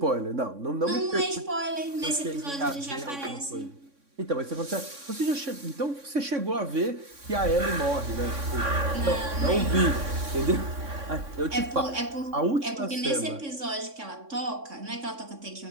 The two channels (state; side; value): late; left; 3.6 ms